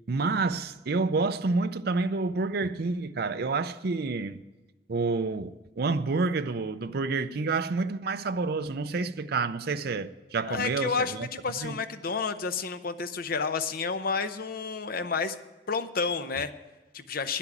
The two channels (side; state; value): both; normal; correlation 0.22